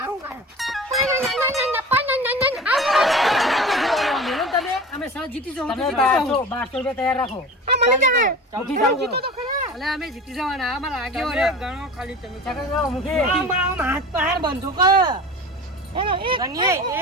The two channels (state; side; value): normal; both; correlation 0.35